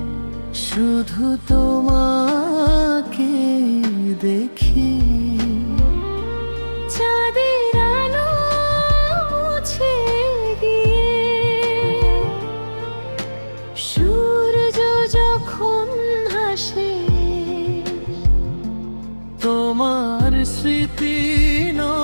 শুধু তোমাকে দেখি। চাঁদের আলো মুছে গিয়ে সূর্য যখন হাসে, তোমার স্মৃতি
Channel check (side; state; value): both; inverted; correlation -1.00